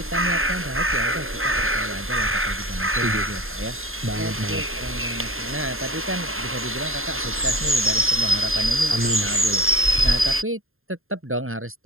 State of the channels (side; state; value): left; late; 0.61 ms